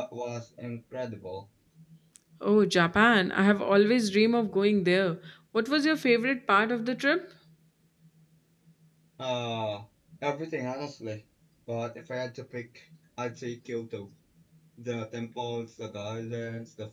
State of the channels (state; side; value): identical; both; correlation 1.00